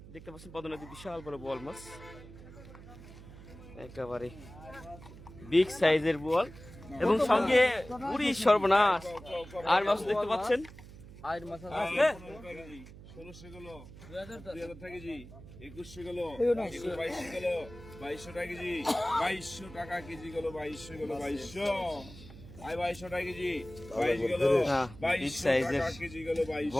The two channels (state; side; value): noise; right; hum, 17 dB below the sound